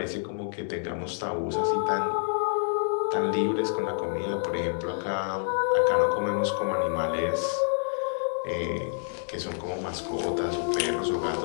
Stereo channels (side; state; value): right; silent; digital silence